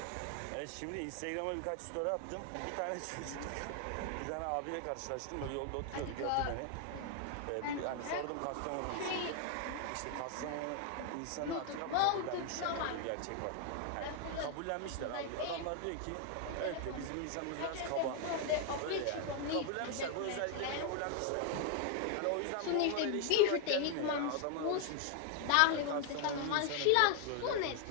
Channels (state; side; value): different; both; correlation 0.00